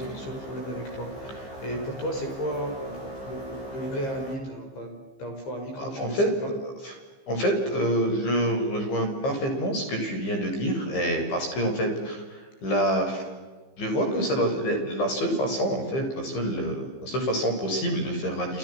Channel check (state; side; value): late; right; 15 ms